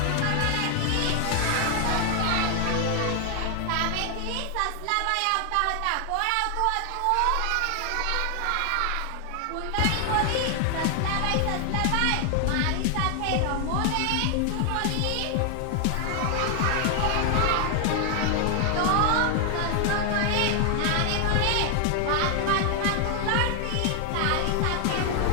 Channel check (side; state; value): both; different; correlation 0.00